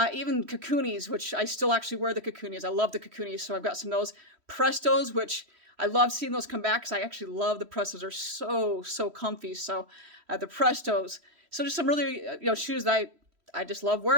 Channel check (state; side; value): late; left; 3.1 ms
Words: Even Kakunis, which I still actually wear the Kakunis. I love the Kakunis, so I've got some of those. Prestos, which I love seeing those come back because I actually love the Prestos. They're so comfy. So the Prestos. So just some really shoes that I just love